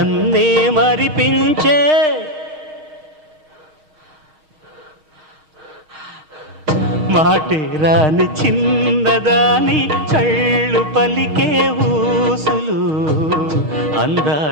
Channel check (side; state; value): left; late; 6.5 ms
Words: మరిపించే మాటే రాని చిన్నదాని కళ్ళు పలికే ఊసులు